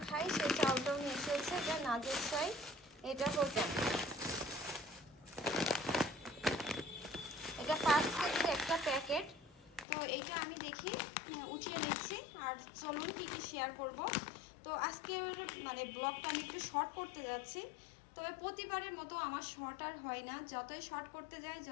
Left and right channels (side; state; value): right; drops out; at 9.9 s